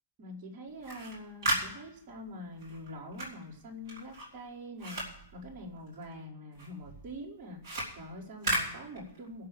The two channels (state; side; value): inverted; both; correlation -0.42